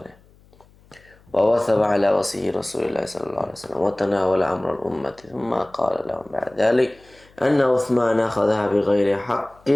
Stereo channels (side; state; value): left; noise; hum, 29 dB below the sound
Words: ووثب على وصي رسول الله صلى الله عليه وسلم وتناول أمر الأمة ثم قال لهم بعد ذلك أن عثمان أخذها بغير حق